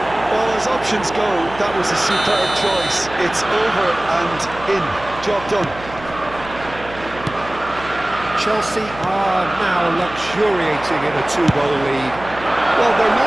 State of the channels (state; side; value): noise; right; hum, 16 dB below the sound